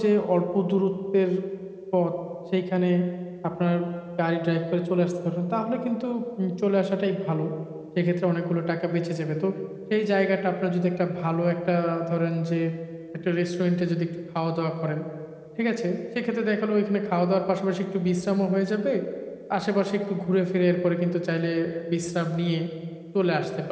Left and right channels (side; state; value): both; identical; correlation 1.00